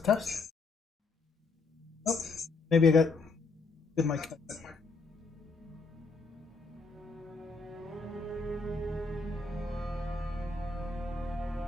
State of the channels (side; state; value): right; quieter; 3.9 dB